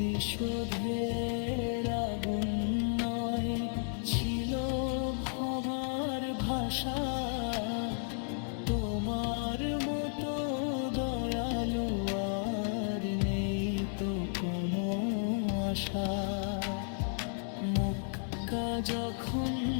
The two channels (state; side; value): silent; right; digital silence